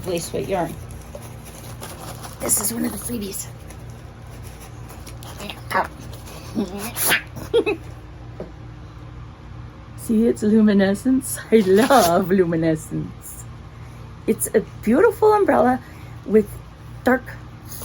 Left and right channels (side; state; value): both; identical; correlation 1.00